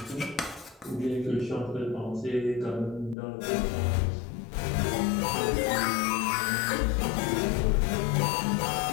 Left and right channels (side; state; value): right; drops out; at 3.2 s